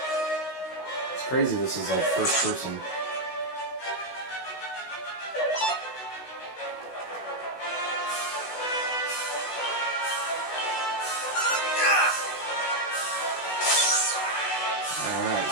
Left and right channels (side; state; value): right; late; 16 ms